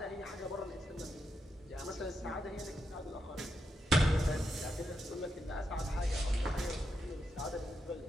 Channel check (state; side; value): normal; both; correlation 0.84